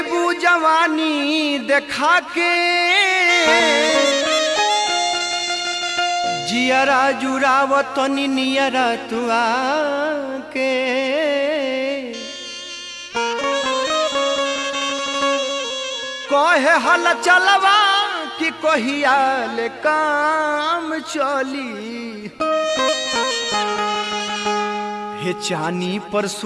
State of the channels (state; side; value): identical; both; correlation 1.00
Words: जवानी देखा के जियरा जुरावतनी नियरा तू आके कहे हल चलवा कि कहिया ले काम चली हे चानी पर